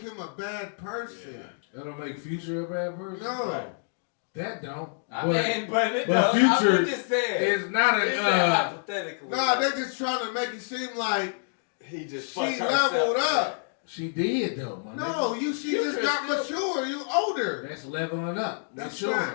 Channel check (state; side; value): silent; right; digital silence